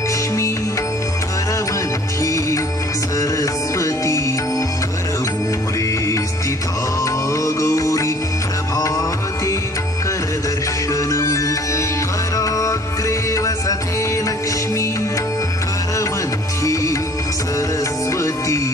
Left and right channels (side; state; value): both; normal; correlation 0.54